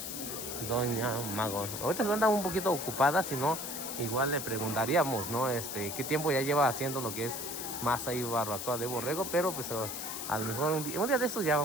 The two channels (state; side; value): noise; left; hiss, 6 dB below the sound